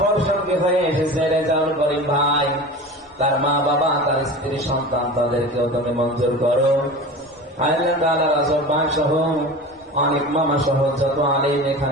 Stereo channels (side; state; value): both; normal; correlation 0.33